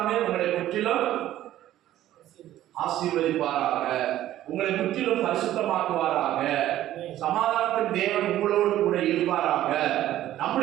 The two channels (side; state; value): left; quieter; 13.3 dB